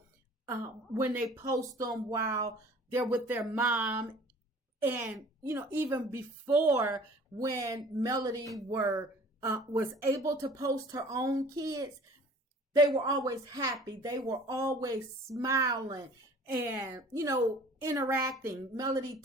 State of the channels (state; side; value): normal; both; correlation 0.49